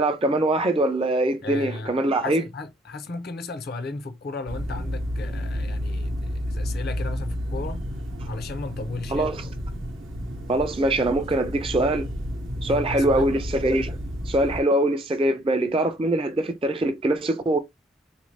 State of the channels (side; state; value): both; normal; correlation 0.63